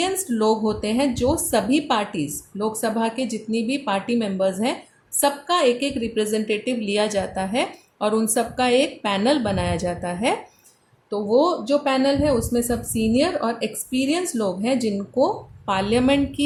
लोग होते हैं, जो सभी पार्टीज़, लोकसभा के जितनी भी पार्टी मेंबर्स हैं, सबका एक एक रिप्रेजेंटेटिव लिया जाता है और उन सबका एक पैनल बनाया जाता है. तो वो जो पैनल है उसमें सब सीनियर और एक्सपीरियंस लोग हैं, जिनको पार्लियामेंट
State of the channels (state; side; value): identical; both; correlation 1.00